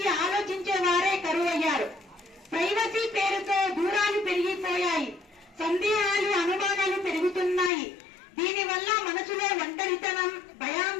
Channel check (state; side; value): drops out; right; at 7.7 s